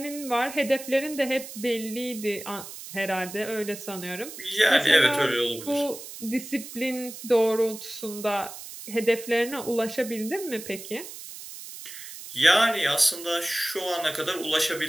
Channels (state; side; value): noise; right; hiss, 12 dB below the sound